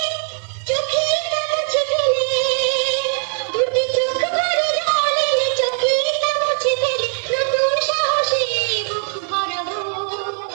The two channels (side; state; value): left; silent; 60 dB below the other